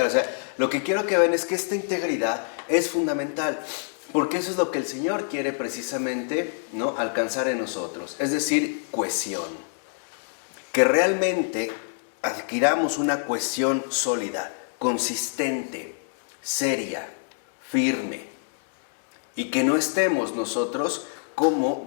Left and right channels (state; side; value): silent; right; 61 dB below the other